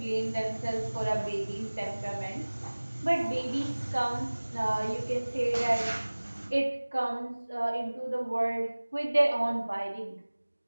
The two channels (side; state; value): both; inverted; correlation -1.00